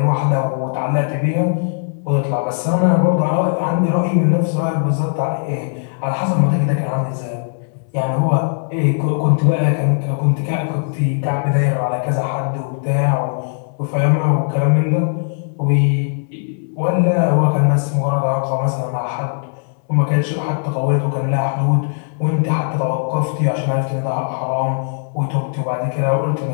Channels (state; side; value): silent; right; 67 dB below the other